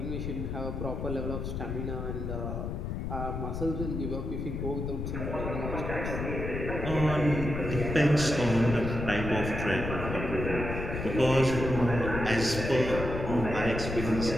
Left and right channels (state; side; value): noise; left; rumble, 4 dB below the sound